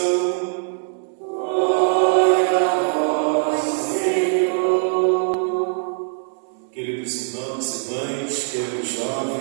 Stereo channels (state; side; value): silent; left; digital silence